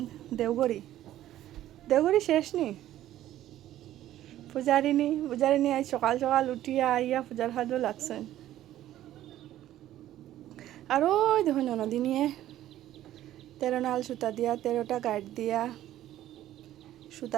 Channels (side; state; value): left; quieter; 13.2 dB